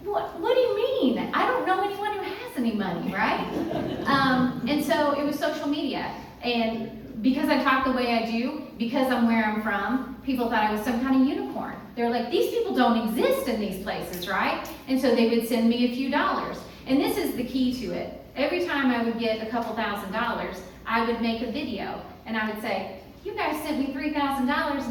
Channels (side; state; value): both; identical; correlation 1.00